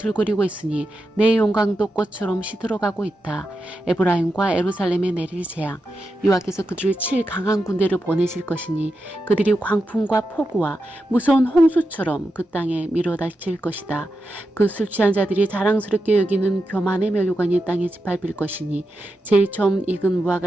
있으니 내 영광도 꽃처럼 시들어가고 있다. 에브라임과 예루살렘에 내릴 재앙 여호와께서 그들을 칠 강한 군대를 보내실 것이니 그들이 광풍과 폭우와 무서운 홍수처럼 그 땅에 밀어닥칠 것이다. 그 술 취한 자들이 자랑스럽게 여기는 교만의 멸류관이 땅에 짓밟힐 것이니 제일 처음 익은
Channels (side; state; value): both; normal; correlation 0.88